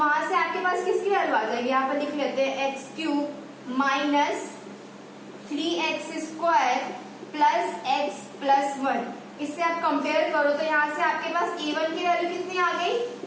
से आपके पास किसकी वैल्यू आ जाएगी। यहाँ पर लिख लेते हैं x cube minus 3x square plus x plus 1। इससे आप कंपेयर करो तो यहाँ से आपके पास A1 की वैल्यू कितनी आ गई,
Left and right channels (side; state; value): both; identical; correlation 1.00